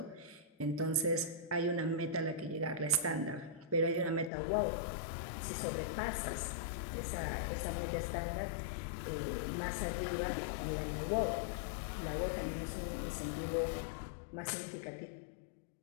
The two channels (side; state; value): right; drops out; at 4.3 s